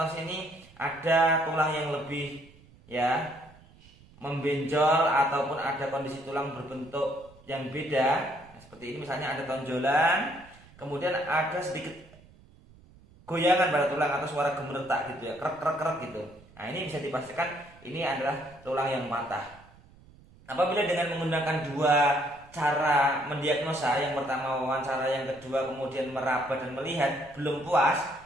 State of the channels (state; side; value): noise; right; rumble, 25 dB below the sound